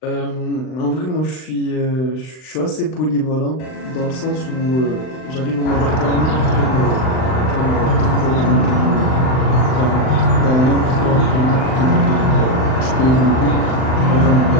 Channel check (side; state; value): right; late; 39 ms